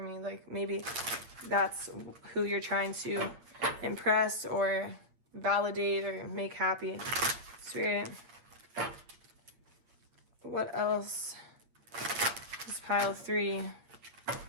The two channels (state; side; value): late; left; 8.8 ms